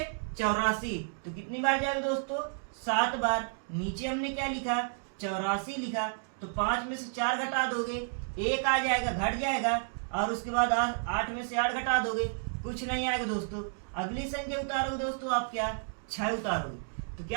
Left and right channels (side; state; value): left; silent; digital silence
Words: 84, तो कितनी बार जाएगा दोस्तों, 7 बार। नीचे हमने क्या लिखा, 84 लिखा। तो 5 में से 4 घटा दोगे, 1 आ जाएगा, घट जाएगा। और उसके बाद 8 में से 8 घटा दोगे, कुछ नहीं आएगा दोस्तों। अगली संख्या उतारोगे दोस्तों आप, क्या 6 उतारोगे तो